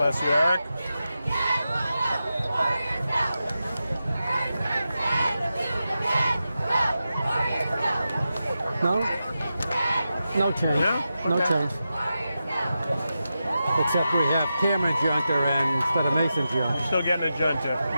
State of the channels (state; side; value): inverted; both; correlation -0.91